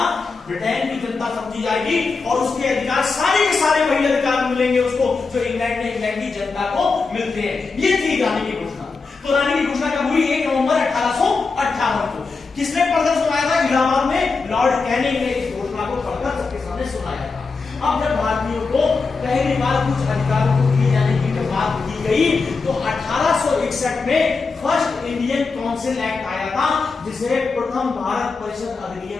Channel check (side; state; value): right; quieter; 4.4 dB